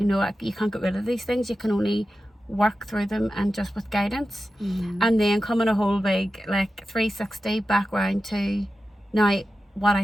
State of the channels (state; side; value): normal; both; correlation 0.92